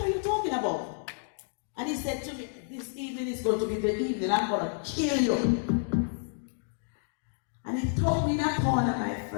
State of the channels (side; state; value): right; silent; digital silence